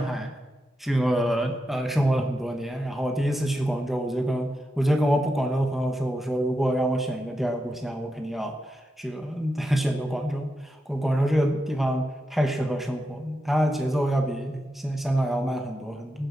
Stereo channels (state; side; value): normal; both; correlation 0.87